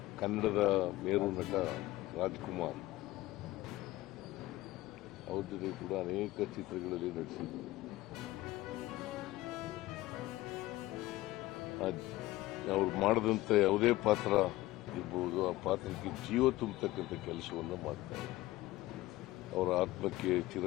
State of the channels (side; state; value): right; quieter; 17.7 dB